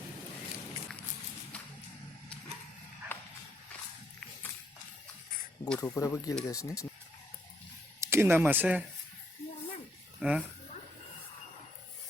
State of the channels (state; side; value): normal; both; correlation 0.73